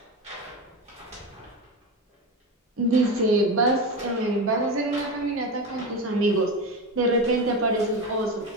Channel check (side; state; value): both; normal; correlation 0.21